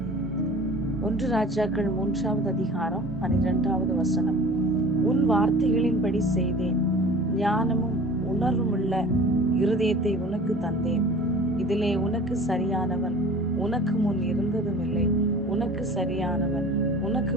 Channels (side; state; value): both; normal; correlation 0.43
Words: 1 ராஜாக்கள் 3வது அதிகாரம் 12வது வசனம். உன் வார்த்தைகளின்படி செய்தேன், ஞானமும் உணர்வுமுள்ள இருதயத்தை உனக்கு தந்தேன். இதிலே உனக்கு சரியானவன் உனக்கு முன் இருந்ததும் இல்லை, உனக்கு சரியானவன் உனக்கு